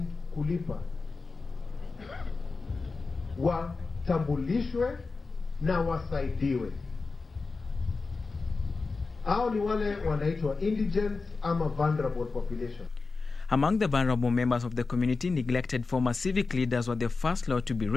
kulipa watambulishwe na wasaidiwe. Hao ni wale wanaitwa indigent ama vulnerable population. Among the vulnerable members of the community, neglected former civic leaders were the first lot to be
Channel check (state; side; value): quieter; right; 4.1 dB